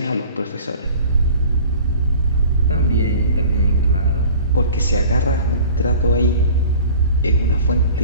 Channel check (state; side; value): inverted; both; correlation -0.44